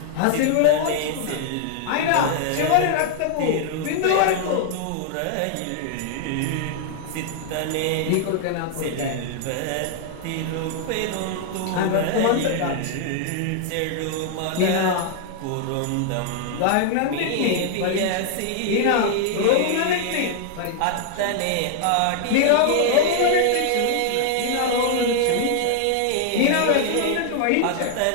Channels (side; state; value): both; different; correlation 0.00